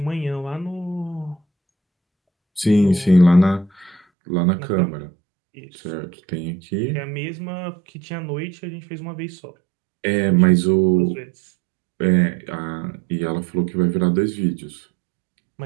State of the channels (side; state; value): left; drops out; at 4.0 s